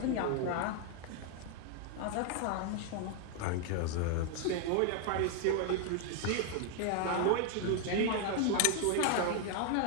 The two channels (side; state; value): both; different; correlation 0.00